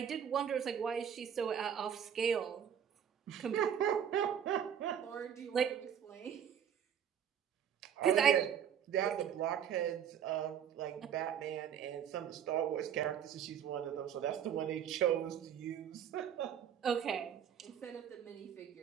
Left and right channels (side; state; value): left; quieter; 8.8 dB